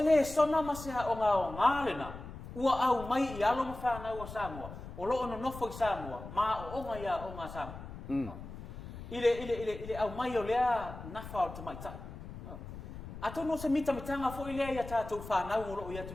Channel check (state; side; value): noise; left; rumble, 12 dB below the sound